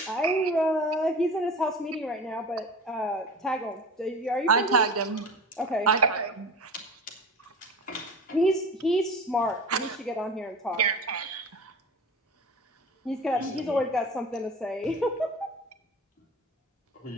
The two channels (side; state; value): both; normal; correlation 0.35